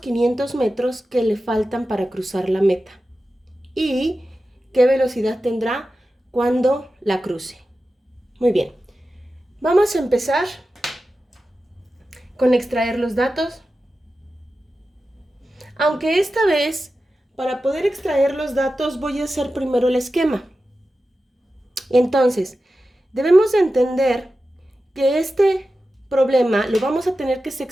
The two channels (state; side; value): normal; both; correlation 0.93